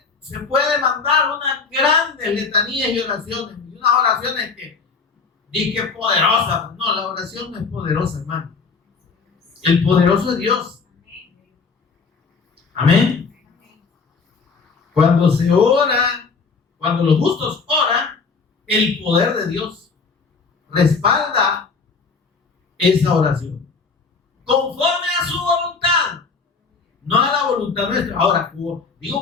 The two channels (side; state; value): right; quieter; 4.9 dB